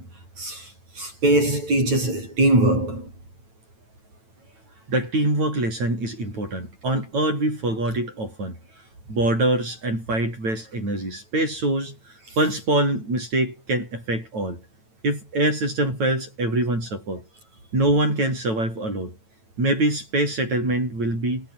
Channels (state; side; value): late; left; 9.1 ms